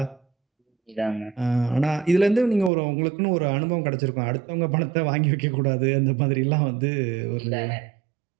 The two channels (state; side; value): drops out; left; at 2.7 s